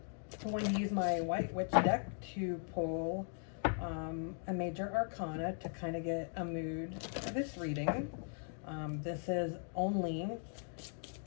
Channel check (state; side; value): silent; right; 52 dB below the other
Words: I'm going to use my White Witch deck to pull a major arcana to kind of get a mood for this reading. This is only